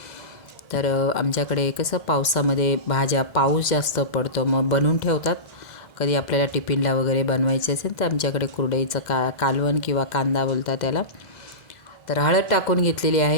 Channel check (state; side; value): late; right; 2.0 ms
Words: तर आमच्याकडे कसं पावसामध्ये भाज्या, पाऊस जास्त पडतो मग बनवून ठेवतात। कधी आपल्याला टिफिनला वगैरे बनवायचे असेल तर आमच्याकडे कुरडईचं कालवण किंवा कांदा बोलतात त्याला। तर हळद टाकून घेतलेली